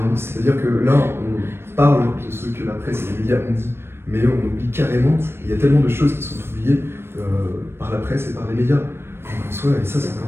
C'est-à-dire que là, on parle de ce que la presse et les médias ont dit, mais on oublie carrément, il y a tellement de choses qui sont oubliées par la presse et par les médias. En soi, et ça, c'est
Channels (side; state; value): left; late; 0.12 ms